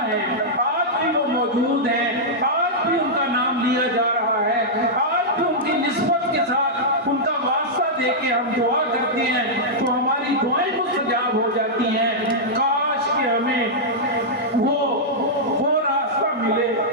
ہیں، آج بھی وہ موجود ہیں، آج بھی ان کا نام لیا جا رہا ہے، آج بھی ان کی نسبت کے ساتھ ان کا واسطہ دے کے ہم دعا کرتے ہیں تو ہماری دعائیں مستجاب ہو جاتی ہیں. کاش کہ ہمیں وہ راستہ ملے،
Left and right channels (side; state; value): both; normal; correlation -0.09